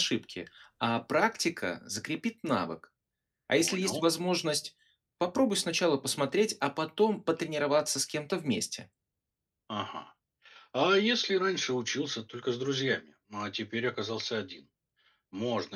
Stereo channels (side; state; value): both; identical; correlation 1.00